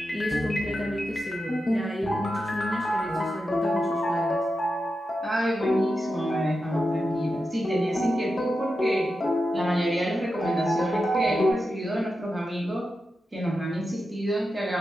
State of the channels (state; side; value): normal; both; correlation 0.89